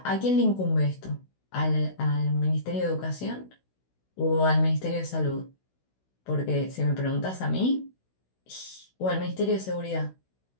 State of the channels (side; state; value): right; late; 16 ms